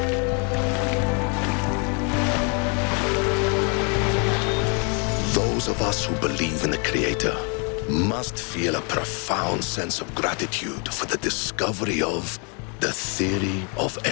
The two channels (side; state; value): right; quieter; 36.1 dB